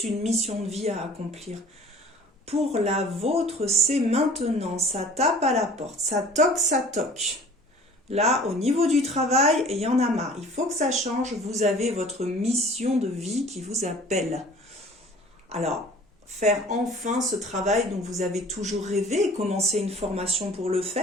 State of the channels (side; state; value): both; normal; correlation 0.48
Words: une mission de vie à accomplir. Pour la vôtre, c'est maintenant. Ça tape à la porte. Ça toque, ça toque. Là, au niveau du travail, il y en a marre. Il faut que ça change. Vous avez votre mission de vie qui vous appelle. Alors, faire enfin ce travail dont vous avez toujours rêvé, commencer une formation pour le